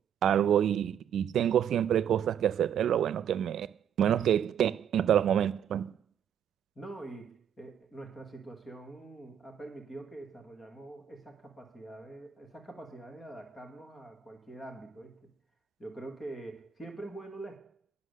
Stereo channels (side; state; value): left; quieter; 9.1 dB